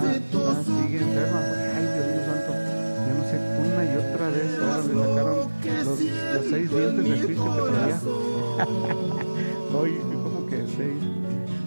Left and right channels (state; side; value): inverted; both; correlation -1.00